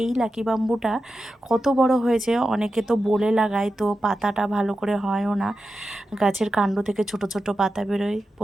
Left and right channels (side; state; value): both; normal; correlation 0.91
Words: এই লাকি বাম্বুটা কত বড় হয়েছে। অনেকে তো বলে লাগায়, তো পাতাটা ভালো করে হয়ও না। গাছের কাণ্ড থেকে ছোট ছোট পাতা বেরোয়।